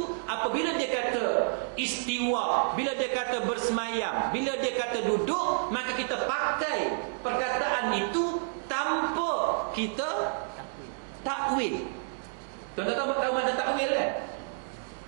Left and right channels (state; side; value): silent; left; digital silence